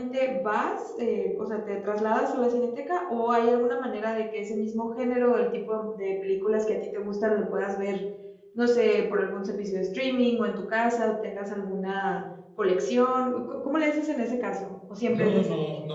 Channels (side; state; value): both; identical; correlation 1.00